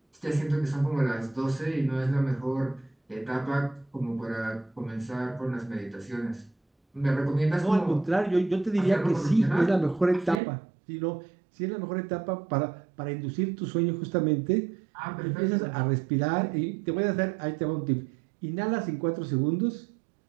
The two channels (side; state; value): left; drops out; at 10.4 s